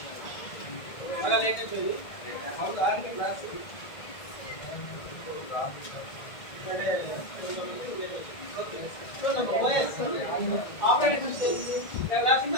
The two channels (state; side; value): late; right; 1.8 ms